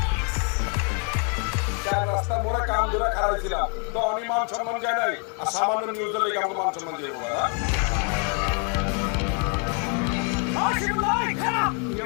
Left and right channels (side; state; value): right; quieter; 38.8 dB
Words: রাস্তা মোড়া কাম ধরে খারাপ ছিলাম তো আমি মান সম্মান যায় নাই আর সামান্য নিউজ হলে কেমন মান সম্মান যাবো